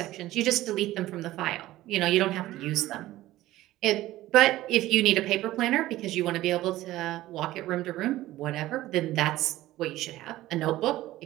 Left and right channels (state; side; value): quieter; left; 15.9 dB